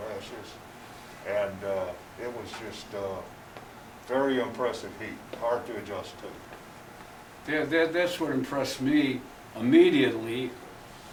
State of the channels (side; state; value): both; identical; correlation 1.00